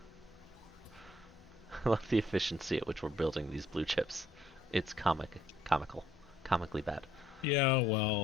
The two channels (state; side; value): normal; both; correlation 0.67